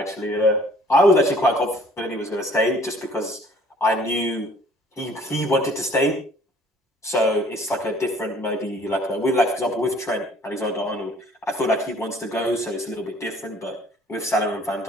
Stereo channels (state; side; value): normal; both; correlation 0.55